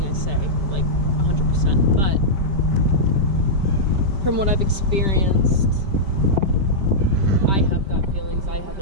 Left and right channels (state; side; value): late; left; 5.1 ms